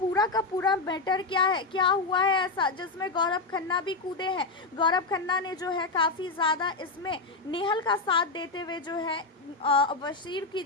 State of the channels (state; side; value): quieter; right; 3.6 dB